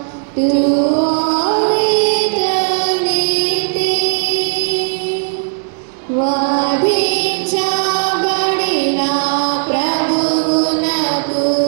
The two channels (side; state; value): left; silent; digital silence